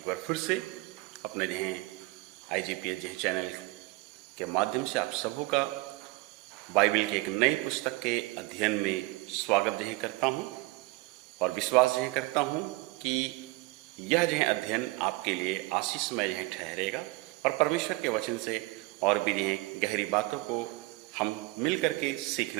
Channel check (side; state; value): left; quieter; 22.6 dB